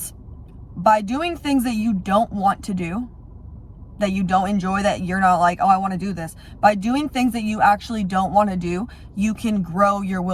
by doing things that you don't want to do, that you don't enjoy, that you're not like, oh, I want to do this. By doing things that you actually don't want to do, you can grow your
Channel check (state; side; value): identical; both; correlation 1.00